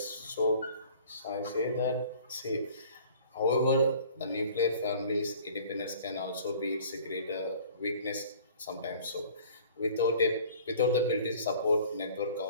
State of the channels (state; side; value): inverted; both; correlation -0.49